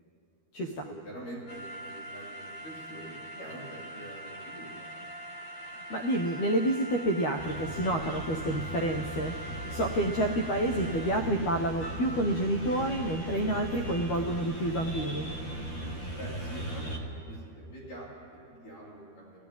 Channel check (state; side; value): late; right; 13 ms